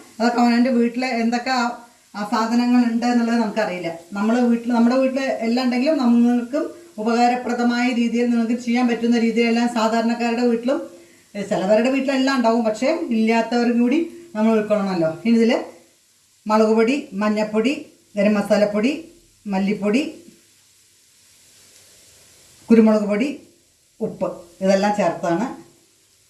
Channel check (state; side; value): identical; both; correlation 1.00